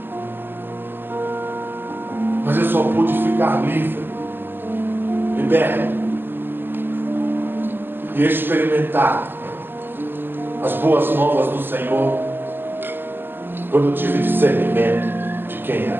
Mas eu só pude ficar livre, liberto e experimentar as boas novas do Senhor quando eu tive discernimento de quem é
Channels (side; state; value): left; late; 0.10 ms